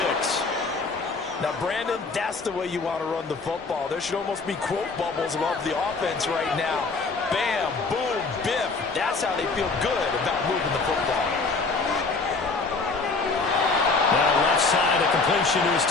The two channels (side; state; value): right; quieter; 4.0 dB